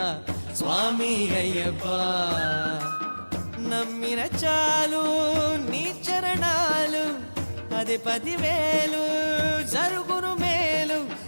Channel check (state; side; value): inverted; both; correlation -1.00